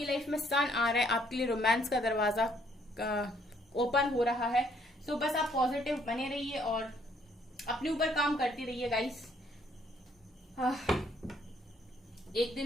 लाइफ में सन आ रहा है, आपके लिए रोमांस का दरवाजा ओपन हो रहा है। सो बस आप पॉजिटिव बने रहिए और अपने ऊपर काम करते रहिए गाइस। एक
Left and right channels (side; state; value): both; normal; correlation 0.66